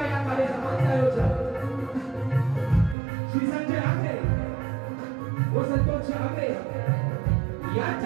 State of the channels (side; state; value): left; drops out; at 3.0 s